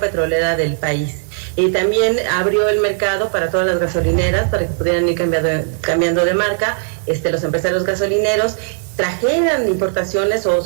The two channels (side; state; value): left; silent; 62 dB below the other